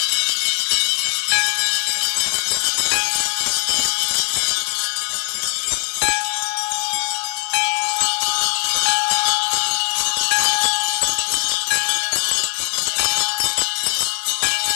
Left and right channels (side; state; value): right; silent; 65 dB below the other